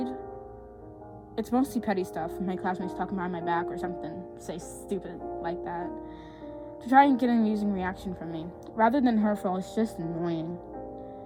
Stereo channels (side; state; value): both; identical; correlation 1.00